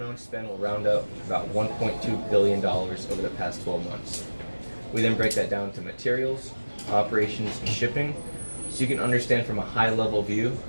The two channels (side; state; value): both; inverted; correlation -1.00